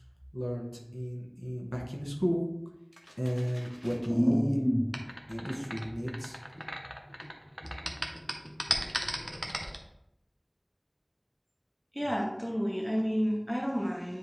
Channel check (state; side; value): identical; both; correlation 1.00